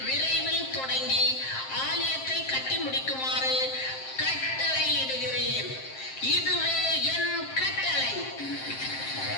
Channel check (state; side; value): late; right; 7.6 ms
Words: விரைவில் தொடங்கி ஆலயத்தை கட்டி முடிக்குமாறு கட்டளையிடுகிறேன். இதுவே என் கட்டளை.